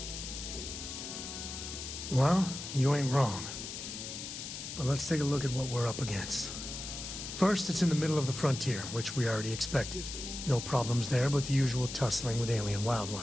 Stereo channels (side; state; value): left; noise; hiss, 8 dB below the sound